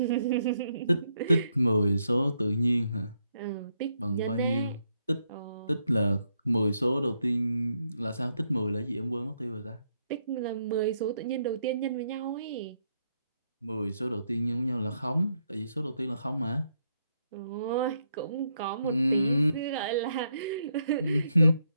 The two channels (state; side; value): inverted; both; correlation -0.77